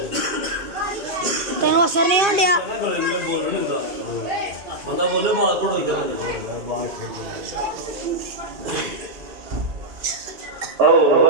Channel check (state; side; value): late; left; 2.3 ms